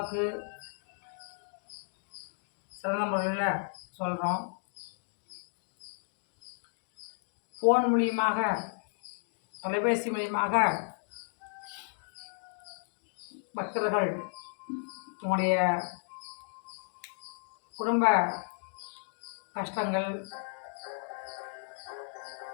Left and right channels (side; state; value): right; silent; digital silence